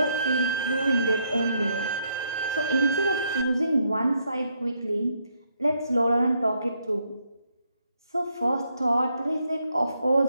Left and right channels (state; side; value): inverted; both; correlation -0.75